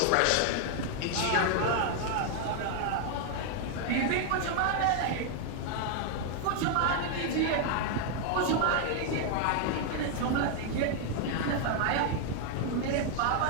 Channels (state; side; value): different; both; correlation 0.00